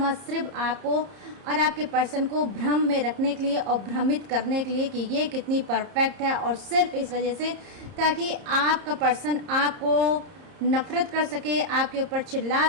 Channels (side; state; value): left; late; 30 ms